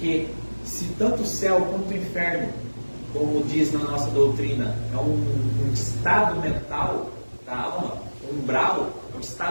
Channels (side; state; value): both; inverted; correlation -1.00